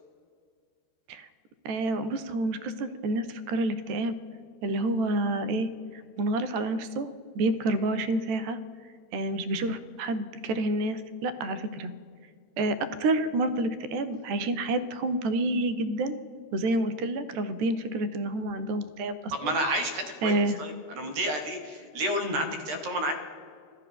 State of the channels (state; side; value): late; left; 13 ms